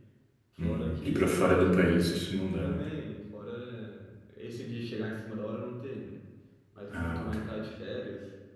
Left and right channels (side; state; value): both; identical; correlation 1.00